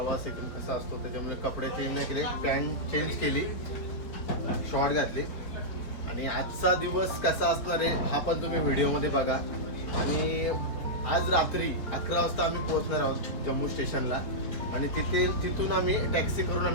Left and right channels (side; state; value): right; late; 4.3 ms